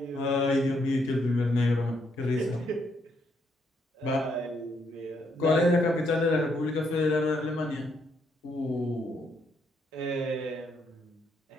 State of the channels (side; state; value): both; normal; correlation 0.75